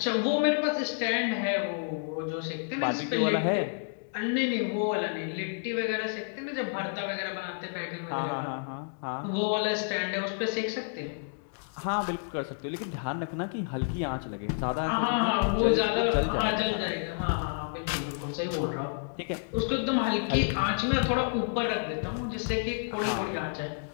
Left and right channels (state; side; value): silent; right; digital silence